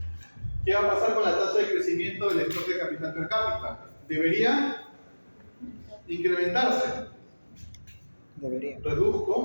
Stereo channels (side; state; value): both; inverted; correlation -1.00